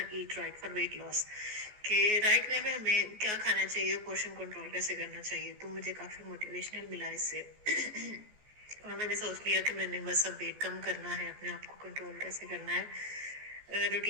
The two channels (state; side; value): late; left; 14 ms